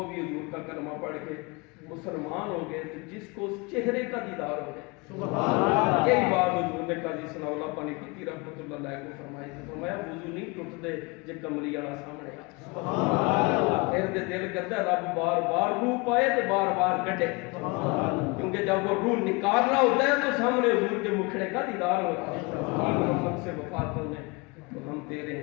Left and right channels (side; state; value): right; quieter; 27.5 dB